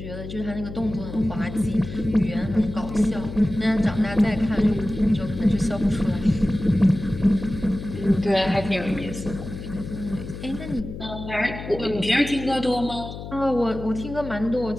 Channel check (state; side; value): noise; left; hum, 10 dB below the sound